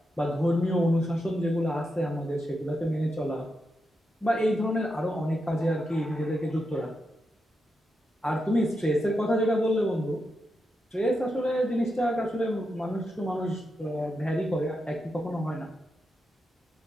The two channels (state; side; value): normal; both; correlation 0.86